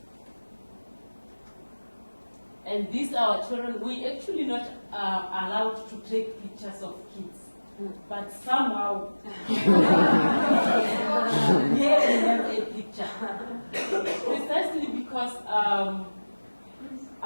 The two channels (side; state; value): both; inverted; correlation -1.00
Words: Yeah. And these are our children. We actually not allowed to take pictures of kids, but somehow here we have a picture. Precisely because